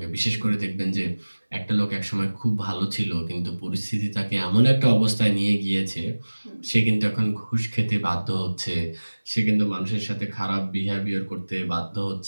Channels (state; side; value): inverted; both; correlation -1.00